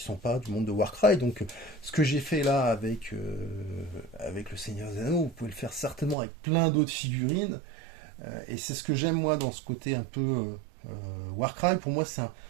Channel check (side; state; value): left; drops out; at 6.2 s